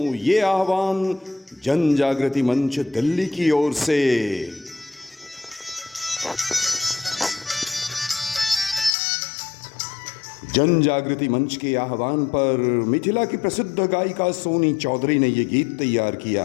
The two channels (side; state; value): right; drops out; at 9.0 s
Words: ये आह्वान जन जागृति मंच दिल्ली की ओर से। जन जागृति मंच के आह्वान पर मिथिला की प्रसिद्ध गायिका सोनी चौधरी ने ये गीत तैयार